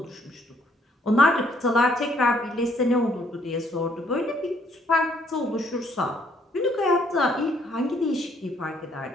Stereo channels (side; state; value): both; normal; correlation 0.67